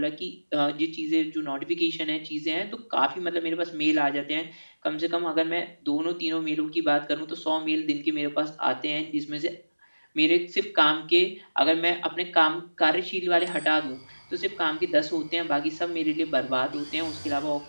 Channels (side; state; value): both; inverted; correlation -1.00